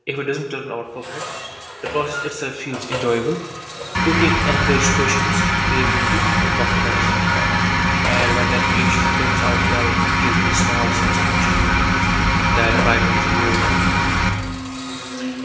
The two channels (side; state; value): both; identical; correlation 1.00